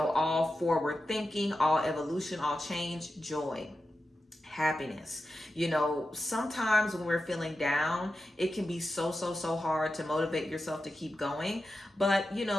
forward thinking, all evolution, all change. Joy, happiness. Sometimes when we're feeling down, it can be so hard to motivate yourself to keep going. But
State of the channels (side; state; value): both; normal; correlation 0.91